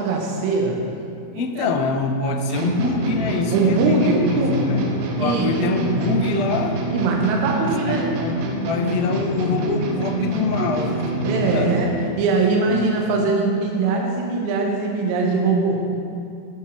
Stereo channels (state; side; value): late; left; 34 ms